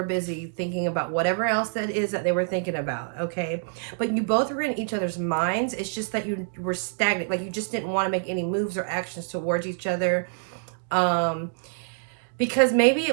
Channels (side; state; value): left; silent; digital silence